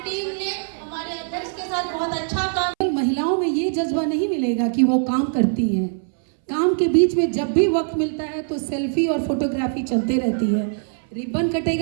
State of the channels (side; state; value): left; silent; 62 dB below the other